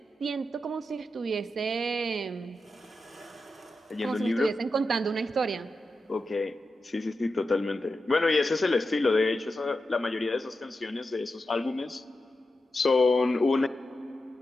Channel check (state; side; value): normal; both; correlation 0.90